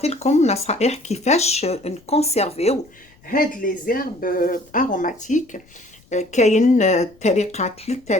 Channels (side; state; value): left; noise; rumble, 29 dB below the sound